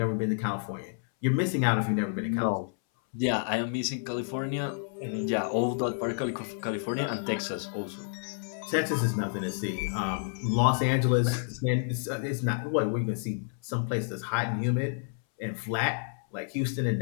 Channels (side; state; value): right; silent; 58 dB below the other